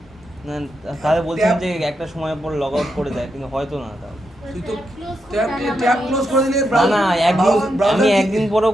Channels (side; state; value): both; normal; correlation 0.84